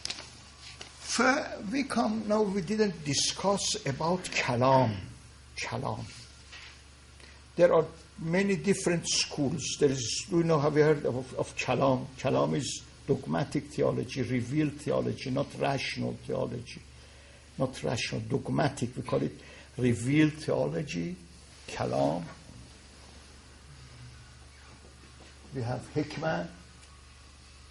we didn't discuss about kalam. There are many different schools. Have you heard of kalam? Kalam is dogmatic theology, revealed theology, not rational theology. Not rational, dogmatic. We call it revealed theology, kalam. We have hikmah.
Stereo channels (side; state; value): both; identical; correlation 1.00